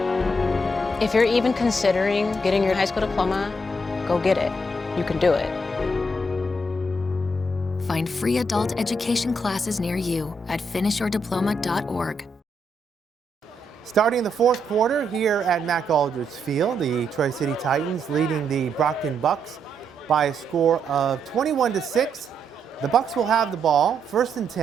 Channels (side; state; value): both; normal; correlation 0.78